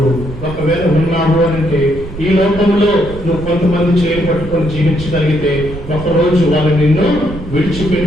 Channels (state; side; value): noise; right; rumble, 11 dB below the sound